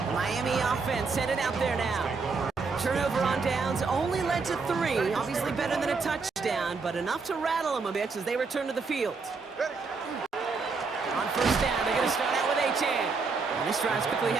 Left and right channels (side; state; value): left; quieter; 4.6 dB